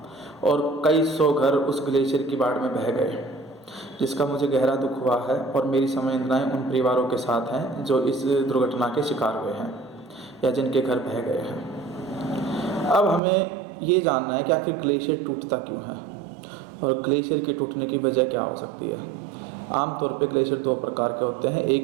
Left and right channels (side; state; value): left; drops out; at 13.2 s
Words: और कई सौ घर उस ग्लेशियर की बाढ़ में बह गए, जिसका मुझे गहरा दुख हुआ है। और मेरी संवेदनाएं उन परिवारों के साथ हैं जो इस दुर्घटना के शिकार हुए हैं या जिनके घर बह गए हैं। अब हमें ये जानना है कि आखिर ग्लेशियर टूटता क्यों है और ग्लेशियर के टूटने की वजह क्या हो सकती है। आमतौर पे ग्लेशियर दो प्रकार के होते हैं,